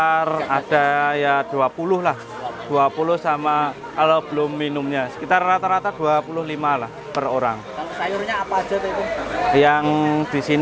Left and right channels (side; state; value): both; identical; correlation 1.00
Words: ada ya 20 lah. 20 sama kalau belum minumnya. Sekitar rata-rata 25 lah per orang. Kalau sayurnya apa aja tuh itu? Yang di